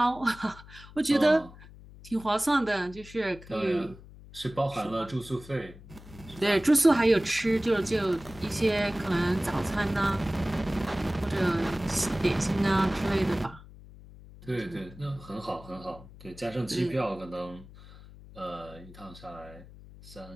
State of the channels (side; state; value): left; noise; hum, 19 dB below the sound